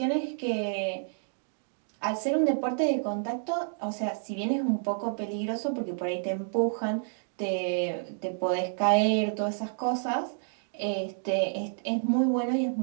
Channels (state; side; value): silent; left; digital silence